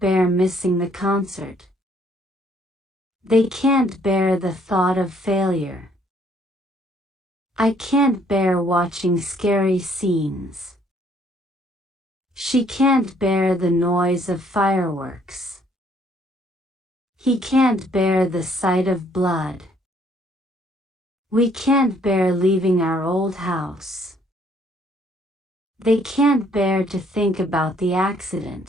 missing the concert. They can't bear the thought of failure. I can't bear watching scary scenes. She can't bear the noise of fireworks. He can't bear the sight of blood. We can't bear leaving our old house. They can't bear to think about the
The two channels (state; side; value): normal; both; correlation 0.64